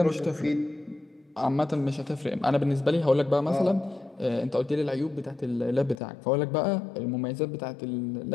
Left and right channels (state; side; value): drops out; right; at 6.0 s